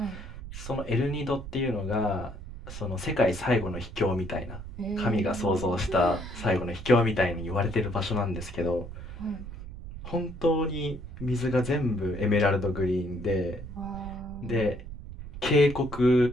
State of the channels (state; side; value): noise; right; rumble, 11 dB below the sound